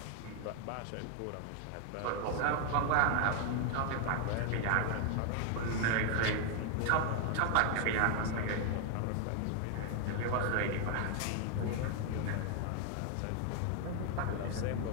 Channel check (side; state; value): both; different; correlation 0.00